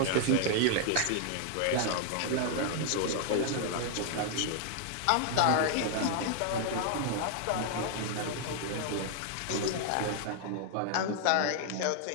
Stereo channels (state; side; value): different; both; correlation 0.00